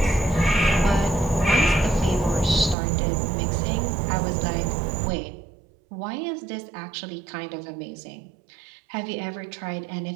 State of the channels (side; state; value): left; drops out; at 2.8 s